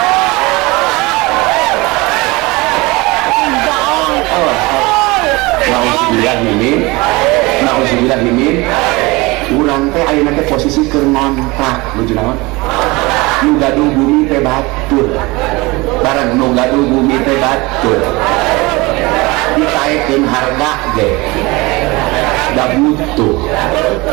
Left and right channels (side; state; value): left; quieter; 23.4 dB